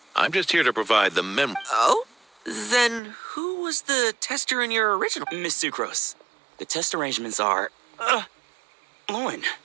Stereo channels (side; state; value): left; drops out; at 3.0 s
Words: I'm just here to provide the Oh? Then who was the tester in your original? Miss Sucrose, the test arrangements are, LOHEN.